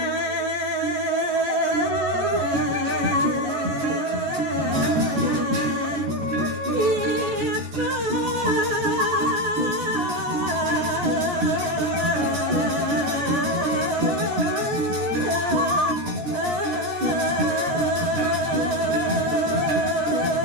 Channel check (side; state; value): left; late; 14 ms